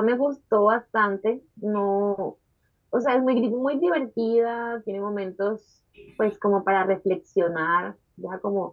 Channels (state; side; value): identical; both; correlation 1.00